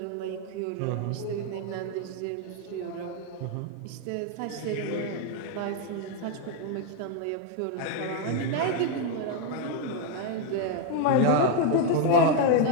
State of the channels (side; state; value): both; different; correlation 0.01